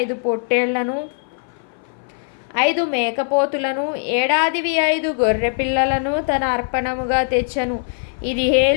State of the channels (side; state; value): right; silent; 58 dB below the other